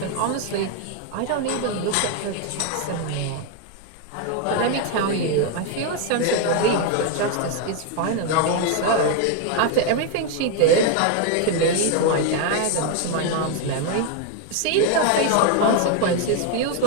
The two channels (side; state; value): both; different; correlation 0.01